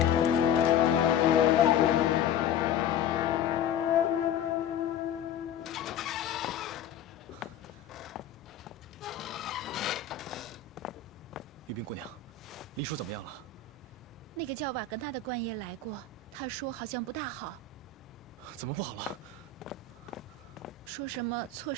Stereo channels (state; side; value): quieter; right; 7.3 dB